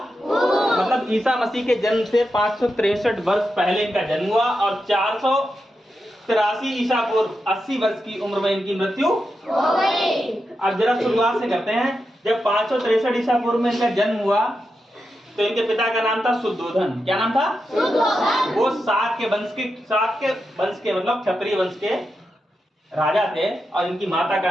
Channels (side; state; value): both; normal; correlation 0.88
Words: मतलब ईसा मसीह के जन्म से 563 वर्ष पहले इनका जन्म हुआ और 483 ईसा पूर्व 80 वर्ष की उम्र में इनकी मृत्यु हो गई। अब जरा शुरुआत से करते हैं। जब 563 ईसा पूर्व में इनका जन्म हुआ तो इनके पिता का नाम था शुद्धोधन। क्या नाम था? शुद्धोधन। वो शाक के वंश के मतलब क्षत्रिय वंश के राजा थे और इनकी माता